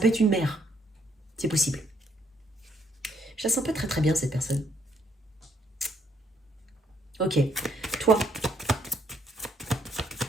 être une mère. C'est possible. Je la sens pas très très bien, cette personne. Ok. Toi.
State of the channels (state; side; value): normal; both; correlation 0.70